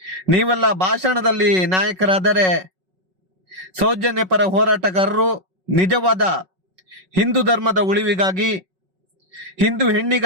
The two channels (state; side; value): late; left; 5.4 ms